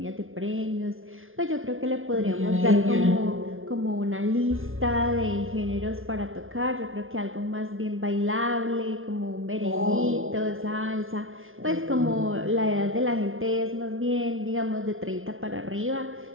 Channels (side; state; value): left; late; 0.60 ms